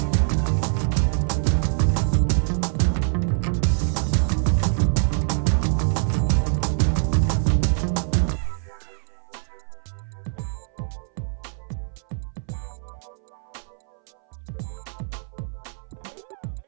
Kiss that. So lollipop the round. Kiss that. kiss. Dai tar lollipop.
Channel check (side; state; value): left; silent; 60 dB below the other